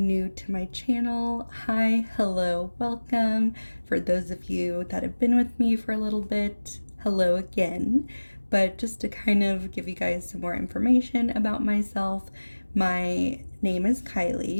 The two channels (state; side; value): inverted; both; correlation -1.00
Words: to my channel, hi, hello, welcome. For those of you that have been with me for a little bit, hello again. But just to kind of give you guys some more information about myself, my name is